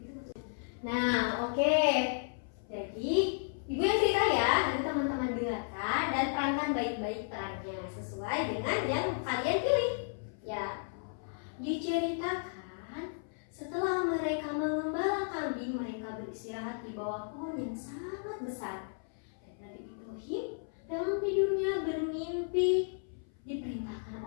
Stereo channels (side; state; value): right; silent; 55 dB below the other